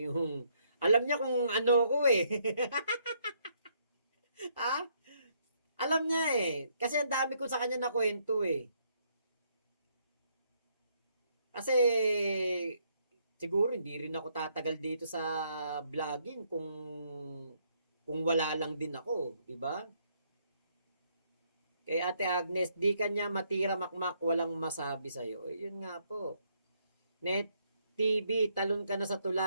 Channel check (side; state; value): both; inverted; correlation -0.71